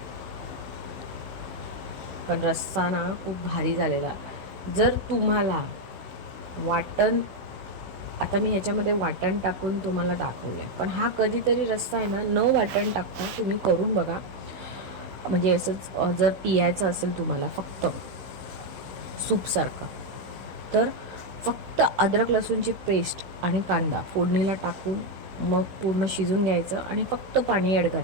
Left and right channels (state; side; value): late; left; 16 ms